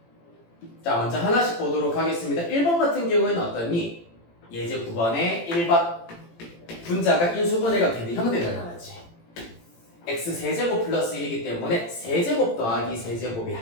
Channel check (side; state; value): right; late; 18 ms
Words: 자, 먼저 하나씩 보도록 하겠습니다. 1번 같은 경우에는 어떠니? 예제 9번에 1번 분자가 인수분해가 되는 형태가 나왔지. x 세제곱 플러스 1이기 때문에 세제곱 더하기